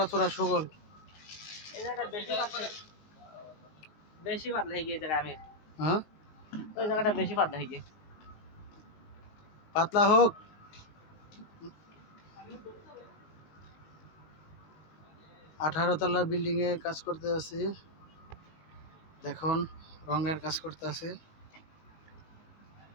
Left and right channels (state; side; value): late; right; 19 ms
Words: ছোড়া সুগল। এই জায়গাটা বেশি পাতলা হয়ে গিয়ে জায়গা আমি হ্যাঁ ওই জায়গাটা বেশি পাতলা হয়ে গিয়ে পাতলা হোক। 18 তলা বিল্ডিং এ কাজ করতে আছি, দেখুন রঙের কাজ করতে আছে।